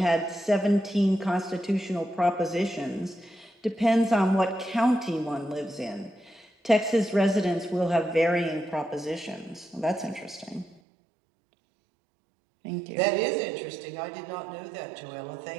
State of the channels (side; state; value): left; drops out; at 10.8 s